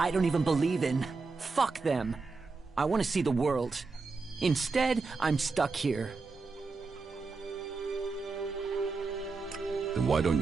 don't even believe in. Fuck them. I want to see the world. Instead, I'm stuck here. Then why don't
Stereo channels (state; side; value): quieter; left; 4.2 dB